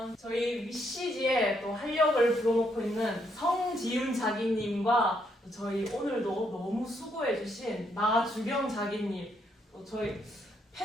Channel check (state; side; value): normal; both; correlation 0.75